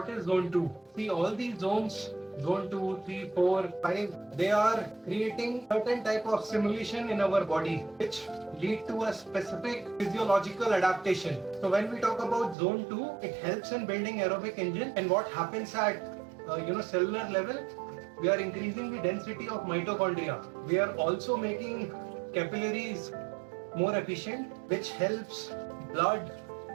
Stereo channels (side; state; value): left; drops out; at 12.6 s